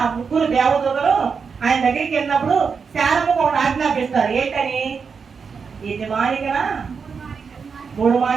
ముగ్గురు దేవదూతలు ఆయన దగ్గరికి వెళ్ళినప్పుడు శారమ్మకు ఒకటి ఆజ్ఞాపిస్తారు. ఏంటని? యజమానికన 3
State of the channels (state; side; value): quieter; left; 5.7 dB